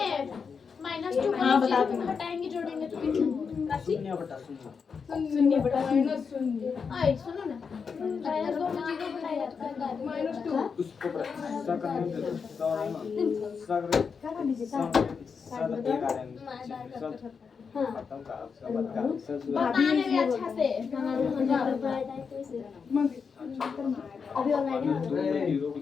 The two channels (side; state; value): right; quieter; 5.8 dB